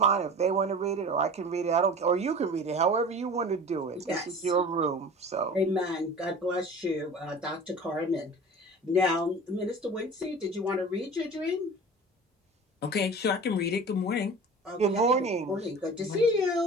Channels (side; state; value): both; normal; correlation 0.39